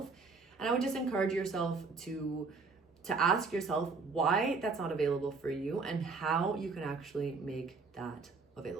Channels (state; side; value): quieter; left; 4.4 dB